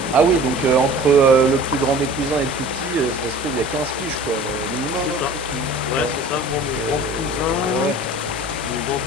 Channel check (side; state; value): both; normal; correlation 0.44